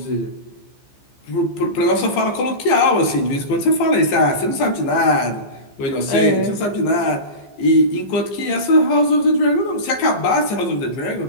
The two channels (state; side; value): late; right; 15 ms